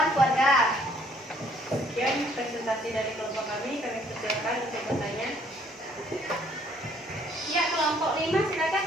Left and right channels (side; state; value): both; normal; correlation 0.63